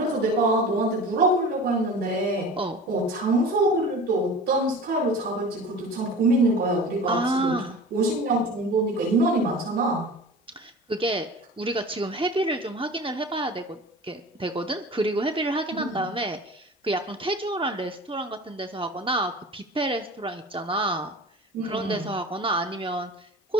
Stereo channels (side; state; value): both; normal; correlation 0.37